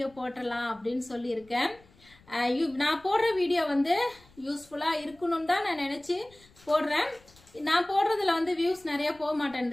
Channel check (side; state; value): left; noise; rumble, 28 dB below the sound